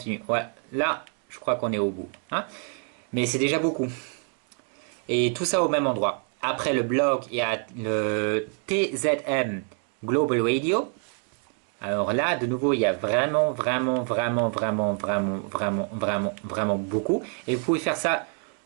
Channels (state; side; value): quieter; left; 37.6 dB